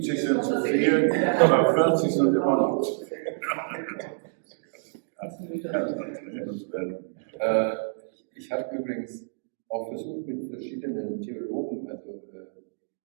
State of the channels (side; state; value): left; silent; digital silence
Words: sind zu viel, aber 40 sind immer noch zu viel. Ich habe übrigens auch versucht, mit verschiedenen Theologen